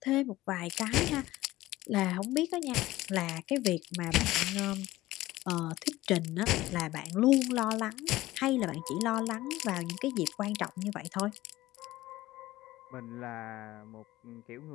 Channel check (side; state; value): right; quieter; 17.0 dB